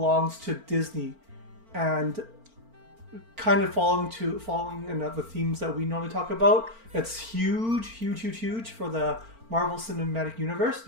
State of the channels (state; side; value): late; left; 4.4 ms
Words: to Disney, and kind of following the themes that we normally talk about. It's huge for the Marvel Cinematic Universe